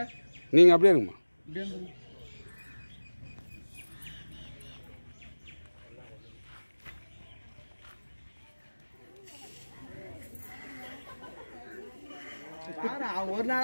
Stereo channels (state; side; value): inverted; both; correlation -1.00